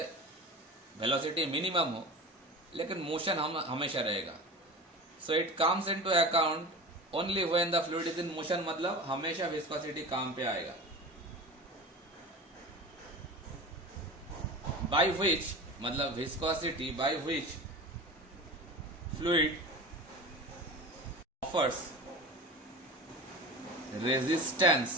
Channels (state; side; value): normal; both; correlation 0.33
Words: वेलोसिटी मिनिमम हो लेकिन मोशन हम हमेशा रहेगा. So it comes into account only when the fluid is in motion, मतलब हमेशा विस्कोसिटी काम पे आएगा. बाय विच, मतलब viscosity by which fluid offers